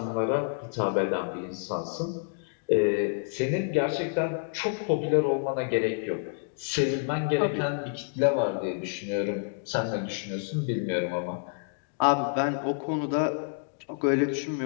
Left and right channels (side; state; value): right; silent; digital silence